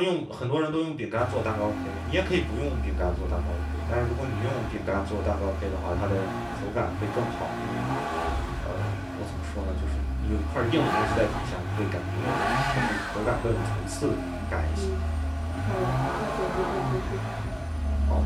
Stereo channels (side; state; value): both; identical; correlation 1.00